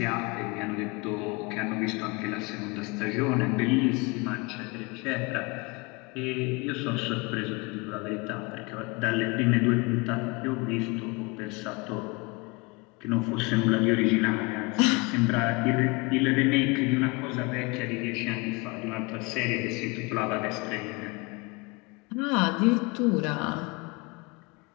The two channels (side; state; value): right; quieter; 27.3 dB